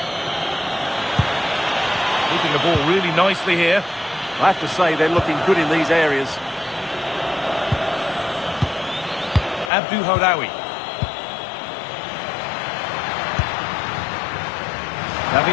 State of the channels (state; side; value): drops out; right; at 9.7 s